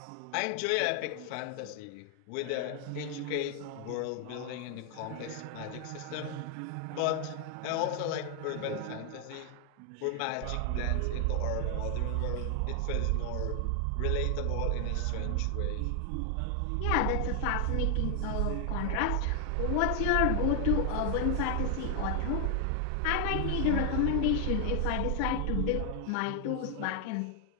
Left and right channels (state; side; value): different; both; correlation 0.00